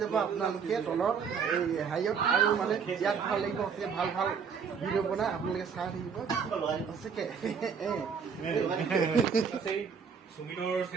আপোনালোকে তলত এই হেৰিয়ত। আৰু মানে বিৰাট ভাল লাগিব ভাল ভিডিঅ' বনাই আপোনালোকে চাই থাকিব সঁচাকৈ। সুমিতৰ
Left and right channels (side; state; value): left; quieter; 6.3 dB